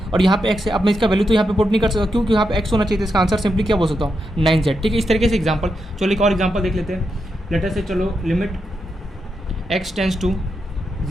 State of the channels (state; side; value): normal; both; correlation 0.84